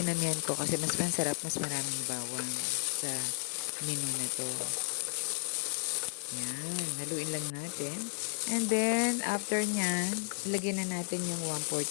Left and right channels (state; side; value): silent; right; 56 dB below the other